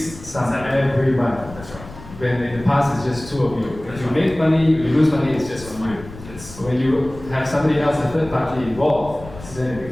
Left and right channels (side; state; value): left; noise; rumble, 16 dB below the sound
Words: sum every month. That's right. When in the past it's just 2 of you. If you make money, you lose money, it's just on you. Yes. But when you have somebody else, a third party involved, then it